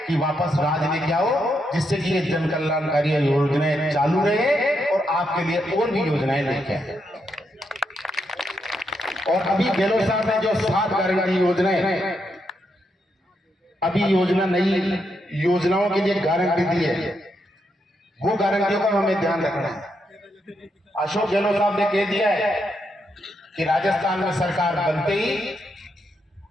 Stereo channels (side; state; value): both; normal; correlation 0.81